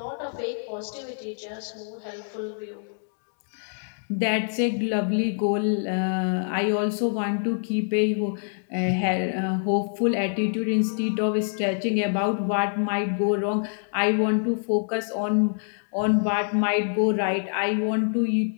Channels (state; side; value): silent; right; digital silence